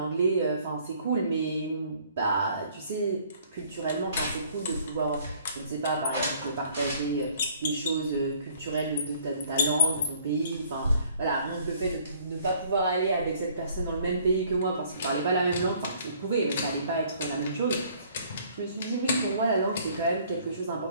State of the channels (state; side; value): inverted; both; correlation -0.58